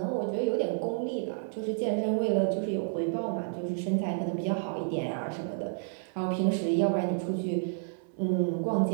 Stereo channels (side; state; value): left; silent; 58 dB below the other